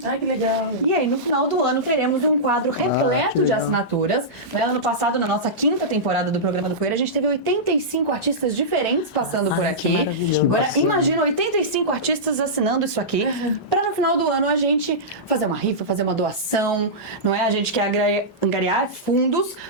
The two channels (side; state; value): both; normal; correlation -0.15